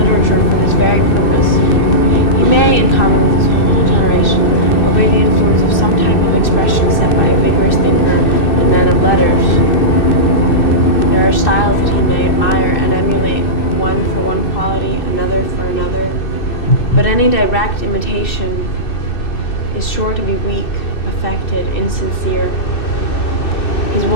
for this very purpose. He may, in common with his whole generation, obey the influence of some type of expression set by a vigorous thinker and man of letters. There are styles that he may admire and emulate, one for one quality, another for another. But any direct imitation is sure to be weak, affected, insincere. His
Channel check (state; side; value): late; right; 2.6 ms